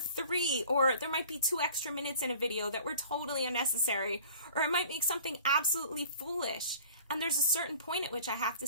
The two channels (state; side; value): inverted; both; correlation -0.46